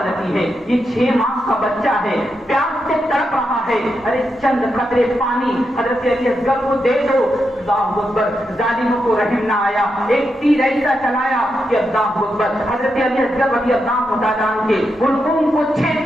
ہے؟ یہ 6 ماہ کا بچہ ہے، پیاس سے تڑپ رہا ہے، ارے چند قطرے پانی حضرت علی اصغر کو دے دو۔ اللہ اکبر، ظالموں کو رحم نہ آیا، ایک تیر ایسا چلایا کہ اللہ اکبر حضرت علی اصغر رضی اللہ تعالیٰ عنہ کے حلقوم کو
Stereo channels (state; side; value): normal; both; correlation 0.85